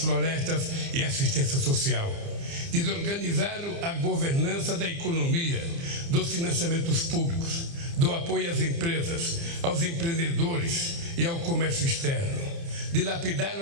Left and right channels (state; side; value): late; left; 29 ms